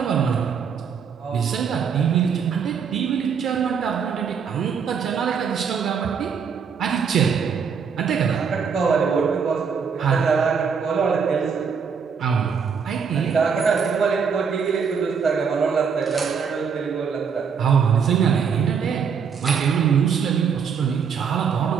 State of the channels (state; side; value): quieter; left; 6.5 dB